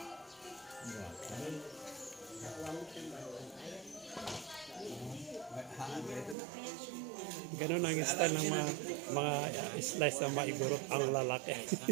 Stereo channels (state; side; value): drops out; left; at 6.4 s